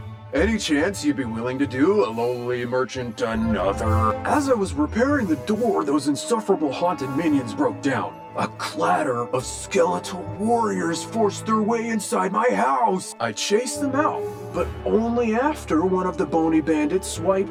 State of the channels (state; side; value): identical; both; correlation 1.00